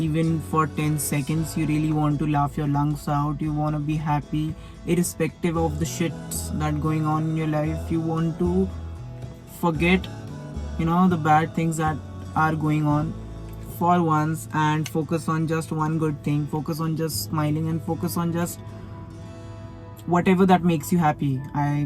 for 10 seconds. You really want to laugh your lungs out, you want to be happy irrespective of the shits that going on in your life. You want to forget the bad things that are going on for once, and focus on just one good thing, focus on just smiling, and focus on just whatever that makes you happy.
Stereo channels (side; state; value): both; identical; correlation 1.00